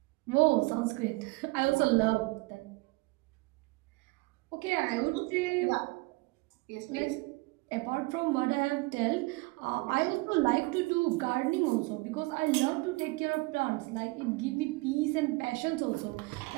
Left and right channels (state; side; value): quieter; left; 24.4 dB